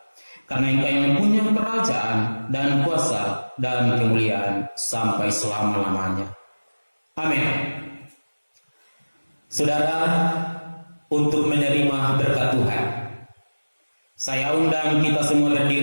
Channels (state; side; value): inverted; both; correlation -1.00